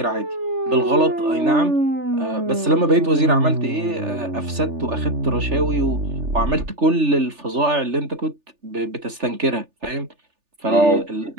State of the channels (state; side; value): late; left; 3.4 ms